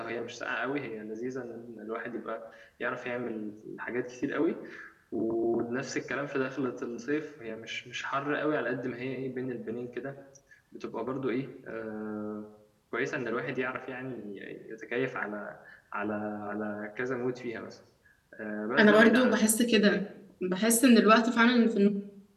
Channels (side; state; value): both; identical; correlation 1.00